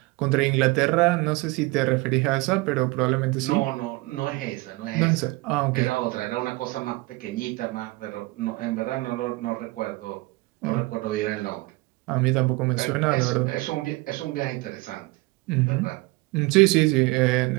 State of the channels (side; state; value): left; quieter; 22.9 dB